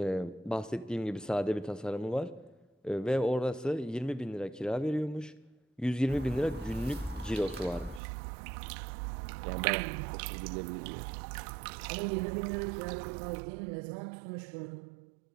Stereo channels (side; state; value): left; drops out; at 8.0 s